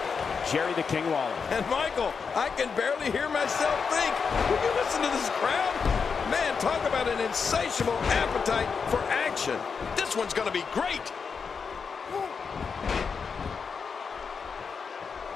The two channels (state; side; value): quieter; right; 5.7 dB